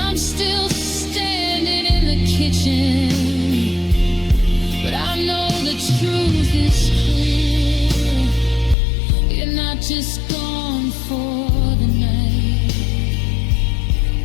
still standing in the kitchen, but I know the truth is clear. You're not just gone for the night,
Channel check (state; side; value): drops out; right; at 8.8 s